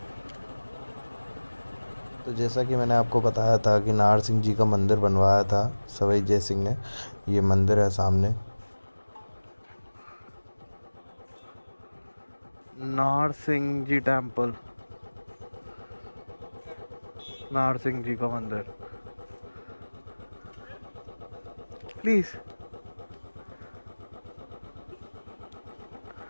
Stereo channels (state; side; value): inverted; both; correlation -1.00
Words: तो जैसा कि मैंने आपको बताया था कि नाहर सिंह जी का मंदिर बनवाया था सवाई जय सिंह ने। ये मंदिर है सामने, नाहर सिंह जी टेम्पल, नाहर सिंह जी का मंदिर। प्लीज